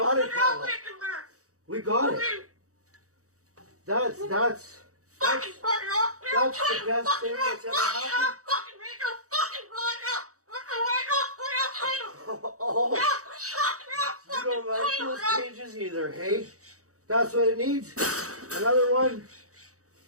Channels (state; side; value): late; left; 0.65 ms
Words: it, Pebble. We got it. That's the best thing that's ever happened. Oh, you don't like those cages either, hey? That's what it needs. Another one.